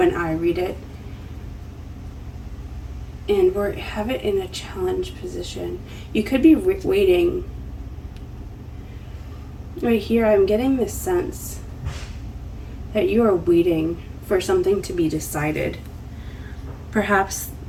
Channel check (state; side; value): identical; both; correlation 1.00